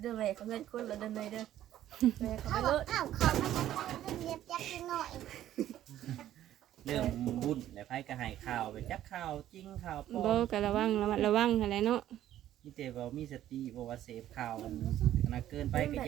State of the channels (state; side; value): quieter; left; 12.5 dB